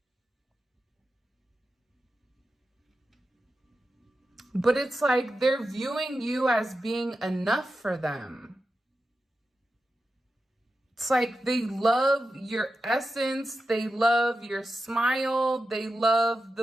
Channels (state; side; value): normal; both; correlation 0.91